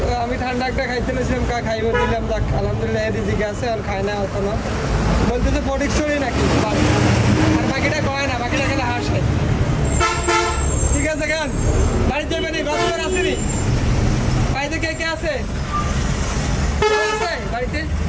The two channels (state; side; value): identical; both; correlation 1.00